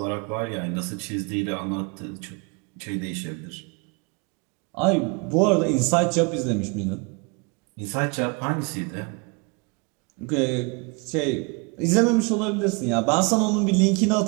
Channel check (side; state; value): left; quieter; 31.4 dB